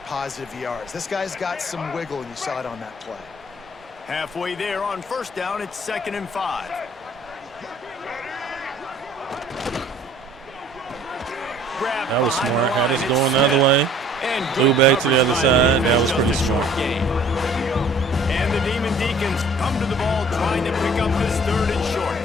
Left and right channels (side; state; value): both; normal; correlation 0.54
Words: positive yards. This guy's got some wiggle, and you saw it on that play. Halfway there on 1st down, it's 2nd and 5. That was smart. Had us going the other way. Threw back to the other side. That was pretty smart. And the Demon Deacons come to the ball, trying to pick up this 3rd and short.